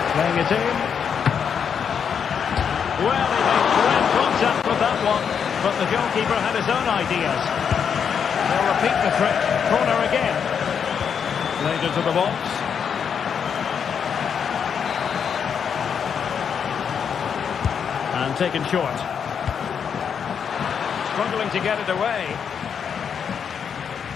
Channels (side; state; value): right; quieter; 7.2 dB